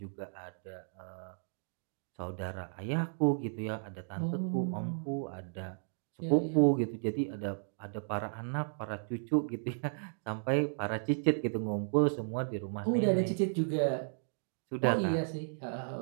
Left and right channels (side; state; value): left; silent; digital silence